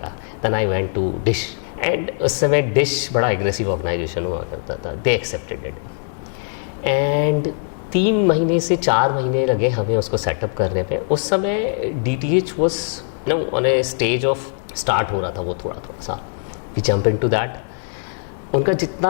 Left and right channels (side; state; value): right; silent; digital silence